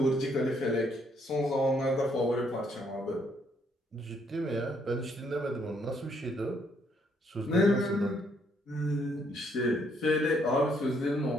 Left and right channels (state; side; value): normal; both; correlation 0.70